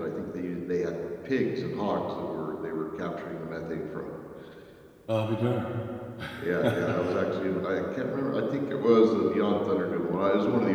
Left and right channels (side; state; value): both; identical; correlation 1.00